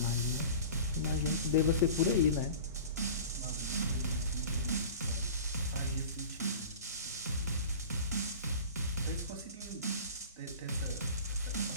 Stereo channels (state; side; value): inverted; both; correlation -0.38